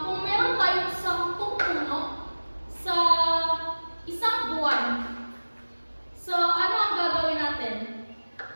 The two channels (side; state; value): both; inverted; correlation -1.00